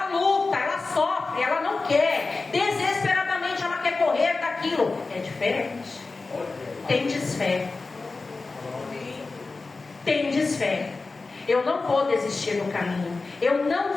luta, ela sofre, ela não quer, desesperadamente ela quer correr daquilo. É diferente. Tem desfé. Tem desfé. Eu não vou desistir do caminho. Eu não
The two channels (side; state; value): right; quieter; 3.8 dB